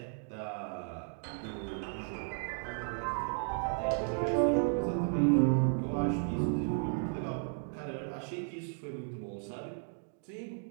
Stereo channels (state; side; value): silent; left; 55 dB below the other